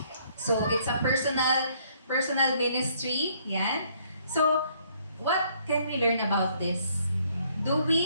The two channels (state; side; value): inverted; both; correlation -0.65